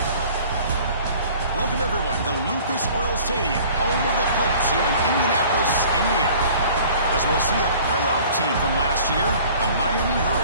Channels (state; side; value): inverted; both; correlation -0.49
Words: Welcome, everyone, to Lucas Oil Stadium, home of the Colts here in Indianapolis, Indiana. As we'll see a playoff team from last year, the Miami